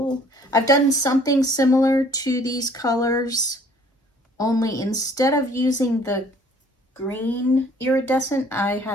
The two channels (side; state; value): both; normal; correlation 0.56